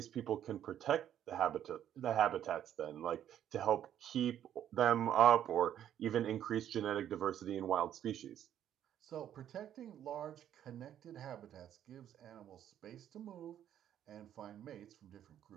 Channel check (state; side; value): quieter; left; 10.6 dB